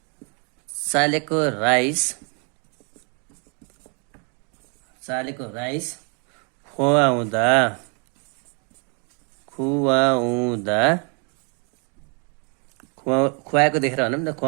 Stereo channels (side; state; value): left; quieter; 37.3 dB